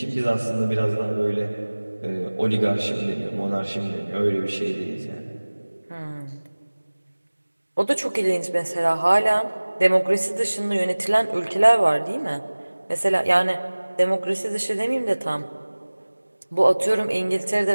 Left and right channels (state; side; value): inverted; both; correlation -1.00